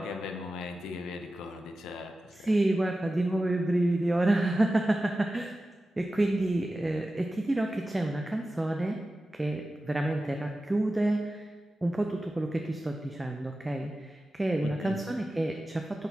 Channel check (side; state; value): both; normal; correlation 0.94